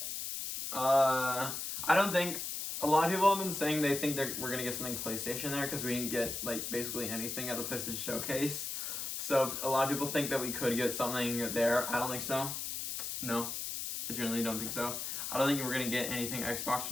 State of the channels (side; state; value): left; noise; hiss, 4 dB below the sound